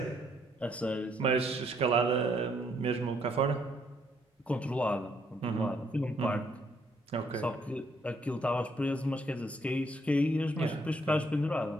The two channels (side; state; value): both; normal; correlation 0.70